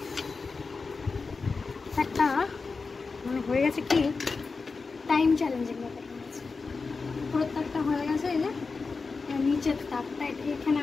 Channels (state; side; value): quieter; right; 4.4 dB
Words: একটা মানে হয়ে গেছে কি টাইম চ্যালেঞ্জিং ব্যাপার হয়েছে। পুরো দাগটা হয়ে গেছে। এই যে নিচের দাগটা, এখানে